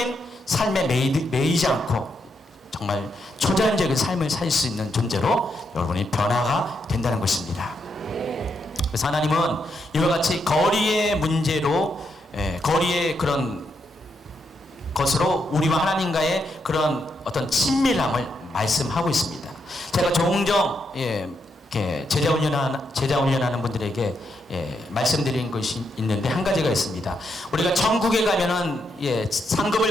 삶에 매이지 않고 정말 초자연적인 삶을 살 수 있는 존재로 여러분이 변화가 된다는 것입니다. 그래서 하나님은 이와 같이 거리의 문제로 거리의 그런 것으로 우리와 하나님과의 그런 어떤 친밀함을 말씀하고 있습니다. 제가 종종 제자 훈련하는 분들에게 말씀드린 것이 있는데 한 가지가 있습니다. 우리가 천국에 가면은 상급을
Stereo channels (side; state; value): both; normal; correlation 0.80